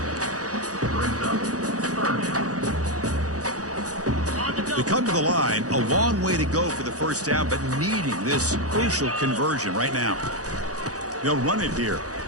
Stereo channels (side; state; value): left; late; 0.67 ms